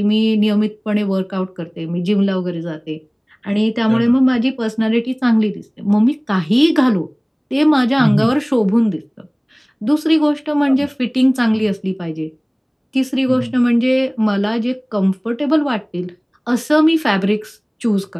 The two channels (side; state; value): both; identical; correlation 1.00